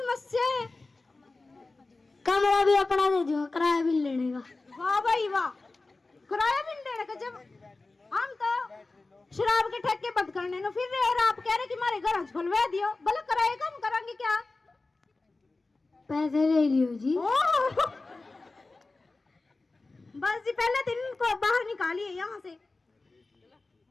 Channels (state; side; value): quieter; right; 3.4 dB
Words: है। कमरा भी अपना दे दो, किराया भी लेने का। वाह भाई वाह, किराया भी देने का। जब हम तो शराब के ठेके बंद करने नो फिर और आप कह रहे कि हमारे घर खुलवा दियो, भले किराया कम करेंगे क्या? पैसे ले लियो जी। बस जी पहले दिन को बाहर निकालिए यहाँ से।